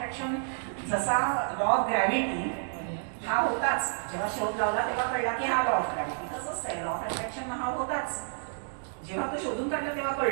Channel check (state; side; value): silent; left; digital silence